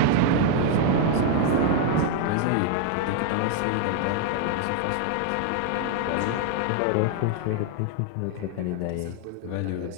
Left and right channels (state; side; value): different; both; correlation 0.00